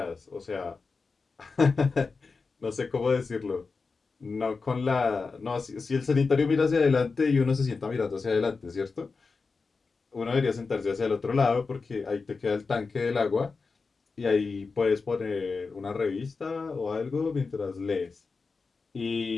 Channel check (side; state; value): right; quieter; 4.4 dB